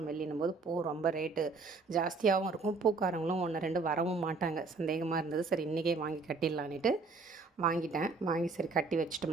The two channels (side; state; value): left; quieter; 4.1 dB